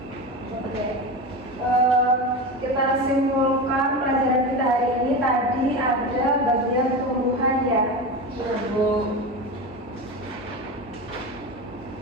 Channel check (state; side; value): normal; both; correlation 0.23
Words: Oke, kita simpulkan pelajaran kita hari ini. Tadi ada bagian tumbuhan ya. Sudah, Bu.